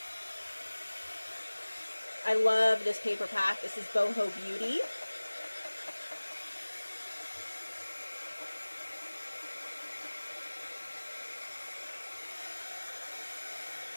I love this paper pack. This is Boho Beauty.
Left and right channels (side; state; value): both; inverted; correlation -1.00